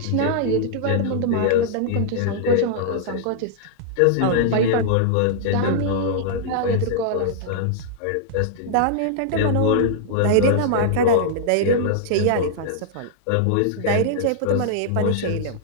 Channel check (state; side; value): different; both; correlation -0.01